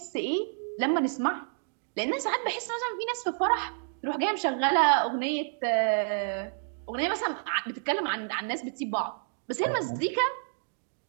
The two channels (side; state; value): left; silent; digital silence